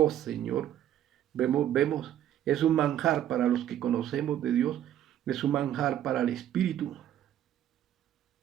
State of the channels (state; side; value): quieter; left; 11.3 dB